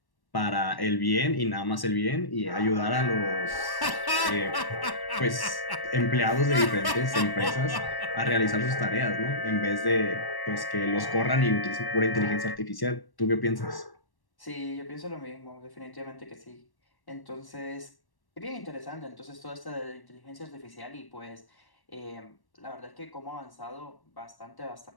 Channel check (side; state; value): right; late; 1.1 ms